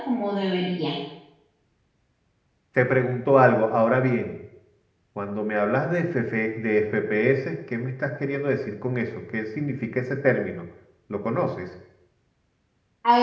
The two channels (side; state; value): both; identical; correlation 1.00